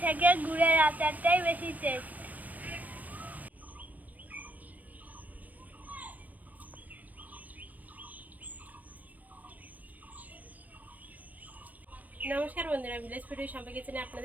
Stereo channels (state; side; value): late; left; 0.078 ms